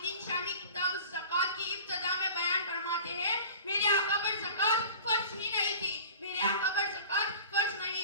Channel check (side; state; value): both; inverted; correlation -0.41